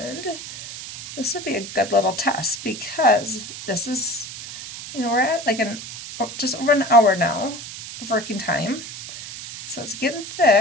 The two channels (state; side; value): noise; right; hiss, 11 dB below the sound